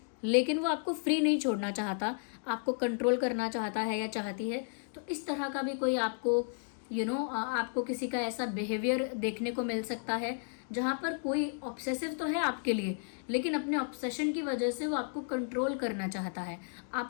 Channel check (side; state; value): right; silent; 56 dB below the other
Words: लेकिन वो आपको फ्री नहीं छोड़ना चाहता, आपको कंट्रोल करना चाहता है या चाहती है। तो इस तरह का भी कोई आपको आपको किसी का ऐसा बिहेवियर देखने को मिल सकता है जहाँ पर कोई ऑब्सेसिव तो है आपके लिए, लेकिन अपने ऑब्सेशन की वजह से वो आपको कंट्रोल करना चाहता है,